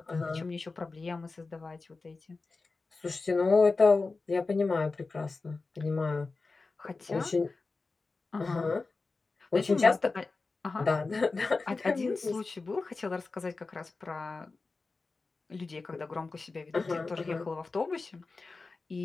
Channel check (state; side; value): quieter; right; 3.9 dB